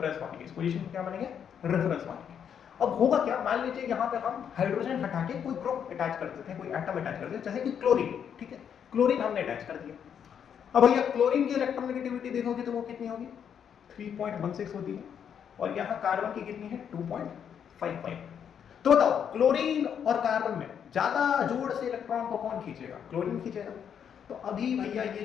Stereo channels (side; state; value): right; quieter; 8.1 dB